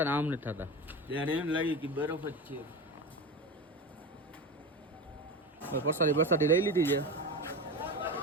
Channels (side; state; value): both; normal; correlation 0.24